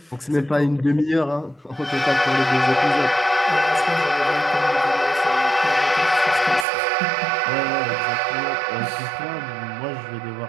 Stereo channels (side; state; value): left; drops out; at 6.7 s